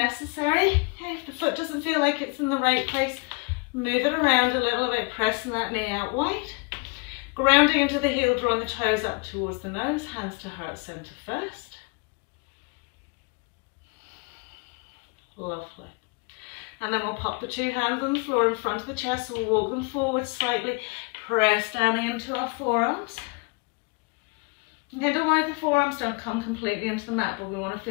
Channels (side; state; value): right; quieter; 31.8 dB